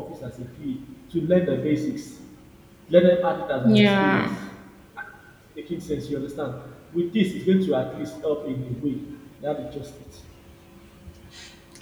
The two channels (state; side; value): identical; both; correlation 1.00